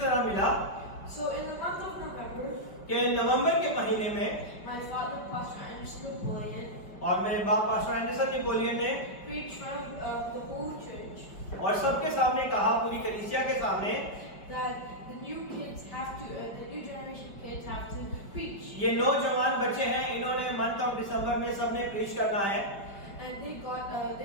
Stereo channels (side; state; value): right; late; 5.1 ms